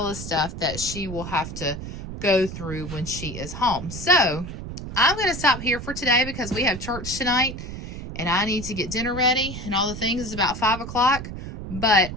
stuff that she will have to go through when she is home. So I'm going to stop here for today because we have church tonight and I need to get dinner ready and all the things. It's about 5 o'clock, but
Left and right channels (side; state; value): right; noise; rumble, 8 dB below the sound